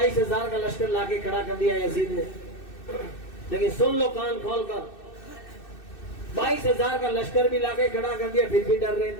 کا لشکر لا کے کھڑا کر دیا یزید نے. لیکن سن لو کان کھول کر، 22,000 کا لشکر بھی لا کے کھڑا کر دیا، پھر بھی ڈر رہے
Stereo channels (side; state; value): right; late; 2.6 ms